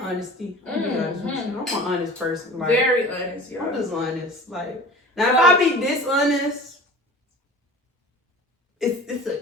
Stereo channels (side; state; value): both; normal; correlation 0.41